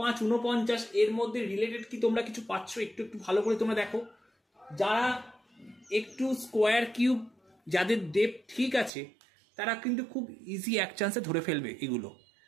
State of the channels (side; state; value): left; drops out; at 8.9 s